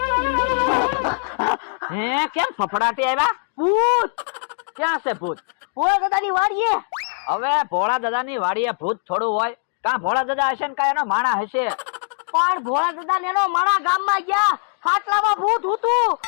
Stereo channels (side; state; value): right; silent; digital silence